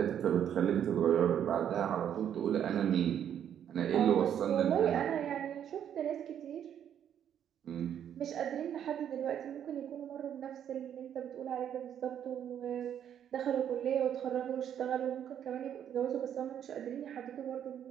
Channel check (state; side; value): quieter; left; 9.5 dB